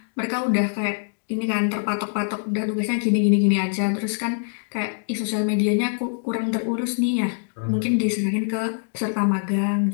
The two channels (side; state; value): right; silent; digital silence